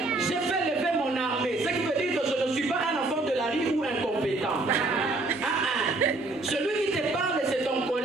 j'ai fait lever mon armée. Ce qui veut dire que je ne suis pas un enfant de la rue ou incompétent. Celui qui te parle, c'est ton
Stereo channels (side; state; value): left; quieter; 3.1 dB